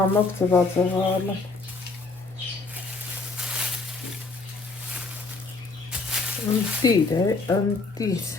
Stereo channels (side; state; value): right; quieter; 3.7 dB